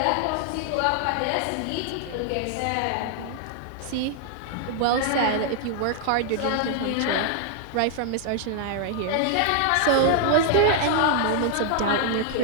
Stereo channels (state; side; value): different; both; correlation 0.00